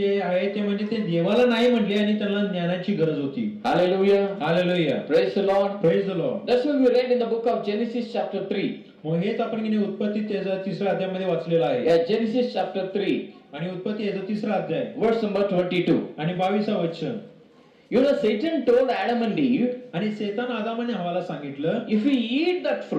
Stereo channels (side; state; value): both; identical; correlation 1.00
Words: आहे ते म्हणजे ते देवाला नाही म्हटले आणि त्यांना ज्ञानाची गरज होती. Hallelujah. Hallelujah. Praise the Lord. Praise the Lord. That's what we read in the book of Genesis chapter 3. मग हेच आपण की नाही उत्पत्ती त्याचा तिसऱ्या अध्यायामध्ये वाचलेलं आहे. Yeah, Genesis chapter 3 आणि उत्पत्ती याचा तिसरा अध्याय verse number 22. आणि 22 वचन. You know, Satan told Adam and Eve, आणि शैतान आदम आणि हवाला सांगितलं, if you eat that